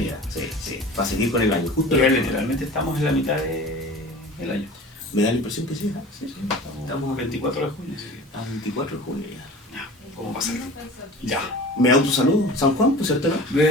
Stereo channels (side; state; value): both; normal; correlation 0.39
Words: Sí, para seguir con el año. Justo pero literalmente estamos en la mitad del año. Me da la impresión que sí, Estamos 24 de junio. A 24 de junio ya. ¿Cómo pasa? Ya. Me autosaludo, San Juan, pues cierto, ¿no?